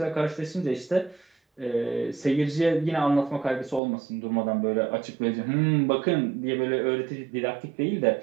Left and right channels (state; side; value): drops out; left; at 3.8 s